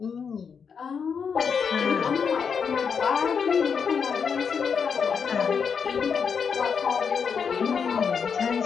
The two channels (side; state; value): right; quieter; 6.3 dB